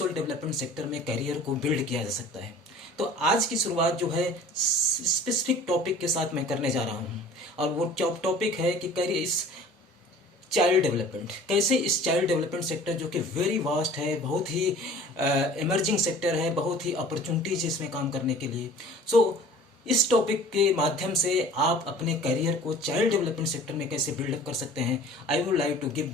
डेवलपमेंट सेक्टर में करियर को बिल्ड किया जा सकता है। तो आज की शुरुआत जो है स्पेसिफिक टॉपिक के साथ मैं करने जा रहा हूँ, और वो टॉपिक है कि करियर इस चाइल्ड डेवलपमेंट, कैसे इस चाइल्ड डेवलपमेंट सेक्टर जो कि वेरी वास्ट है, बहुत ही इमर्जिंग सेक्टर है, बहुत ही अपॉर्चुनिटीज इसमें काम करने के लिए। सो इस टॉपिक के माध्यम से आप अपने करियर को चाइल्ड डेवलपमेंट सेक्टर में कैसे बिल्डअप कर सकते हैं, I would like to give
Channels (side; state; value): both; normal; correlation 0.45